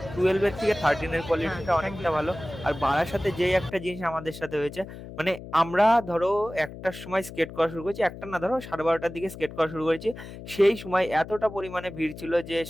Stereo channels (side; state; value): left; noise; hum, 13 dB below the sound